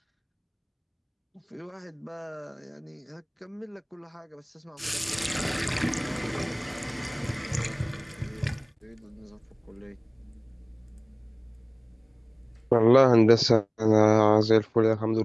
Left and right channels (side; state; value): both; identical; correlation 1.00